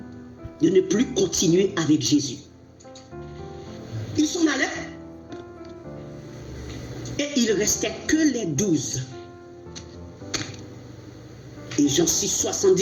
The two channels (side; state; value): both; identical; correlation 1.00